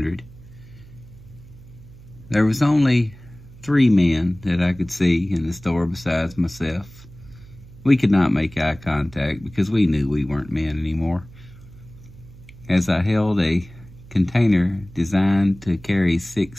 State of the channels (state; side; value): noise; right; hum, 20 dB below the sound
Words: there was only 3 men that I could see in the store besides myself. We could not make eye contact because we knew we weren't men anymore. As I held a container designed to carry